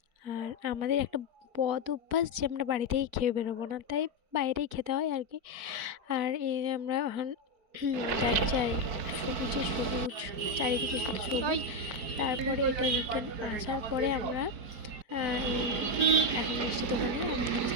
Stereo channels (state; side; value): late; left; 4.5 ms